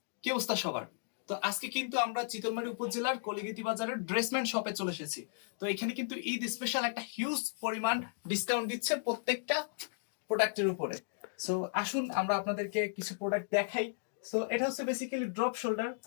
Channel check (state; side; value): silent; right; digital silence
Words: কি অবস্থা সবার? তো আজকে কিন্তু আমরা চিতলমারী উপজেলার কলিগেতি বাজারের ড্রেসম্যান শপে চলে এসেছি। তো এখানে কিন্তু ঈদ স্পেশাল একটা হিউজ পরিমাণ ডিসকাউন্ট দিচ্ছে প্রত্যেকটা প্রোডাক্টের উপরে। সো আসুন আমরা আপনাদেরকে কিছু প্রোডাক্ট দেখাই। সো এটা হচ্ছে বেসিক্যালি ড্রপ শোল্ডার।